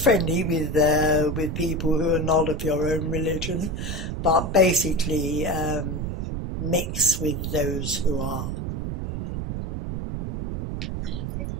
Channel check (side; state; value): right; noise; rumble, 3 dB below the sound